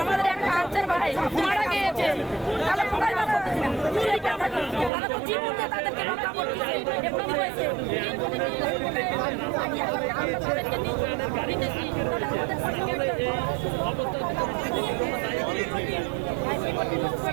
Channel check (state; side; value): drops out; left; at 4.9 s